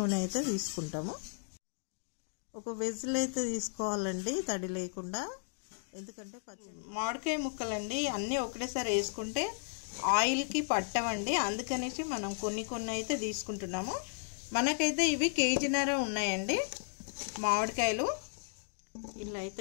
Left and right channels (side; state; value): right; silent; digital silence